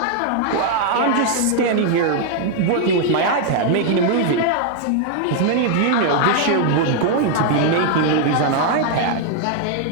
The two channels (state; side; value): different; both; correlation 0.00